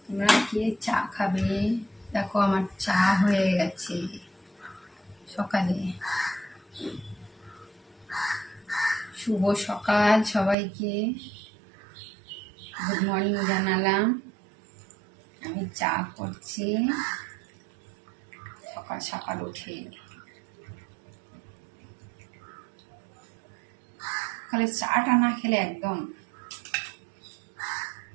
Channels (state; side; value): drops out; left; at 10.6 s